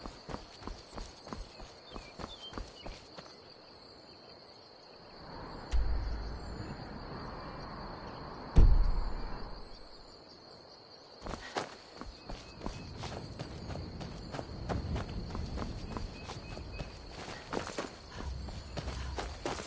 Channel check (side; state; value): both; identical; correlation 1.00